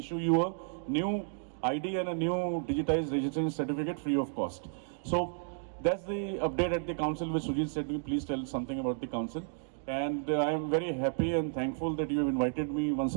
you a new ID and a new digitized registration certificate free of cost. So that's the update at the council which Sujit said. Please tell something about the council. And I am very happy and thankful that you have invited me once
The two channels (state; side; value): silent; left; digital silence